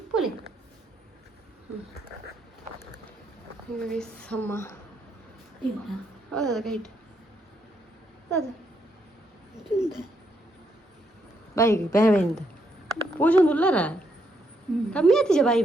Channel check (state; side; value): normal; both; correlation 0.76